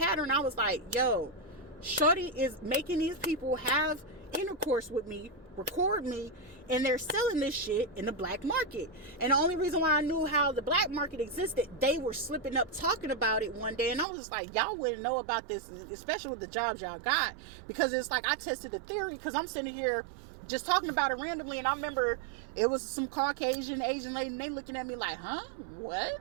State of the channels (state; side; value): drops out; left; at 14.1 s